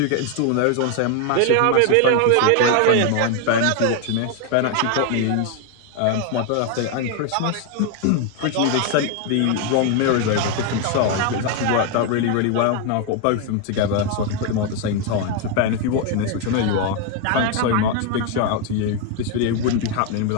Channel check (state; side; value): different; both; correlation 0.01